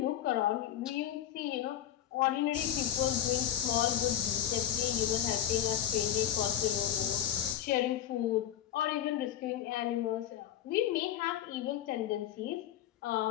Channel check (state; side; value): quieter; right; 11.3 dB